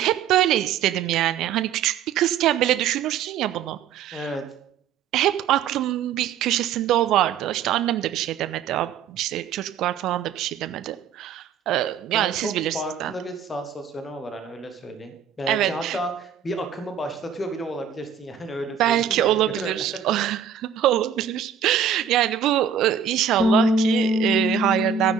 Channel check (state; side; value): quieter; left; 7.8 dB